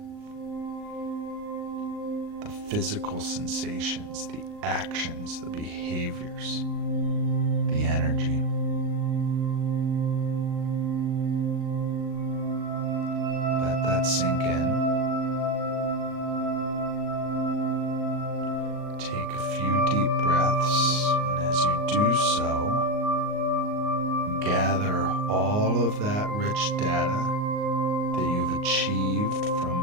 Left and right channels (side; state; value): left; late; 38 ms